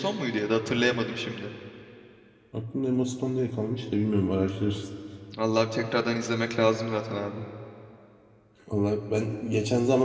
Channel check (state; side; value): identical; both; correlation 1.00